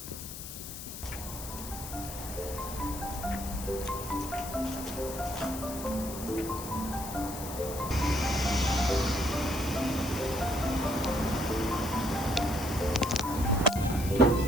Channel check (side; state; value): left; noise; hiss, 10 dB below the sound